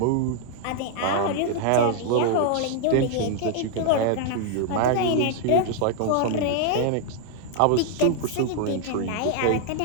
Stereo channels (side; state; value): both; different; correlation 0.00